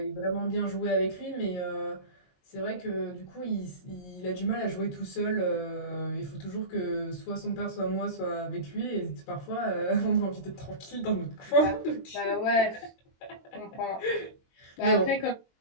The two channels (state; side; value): late; right; 22 ms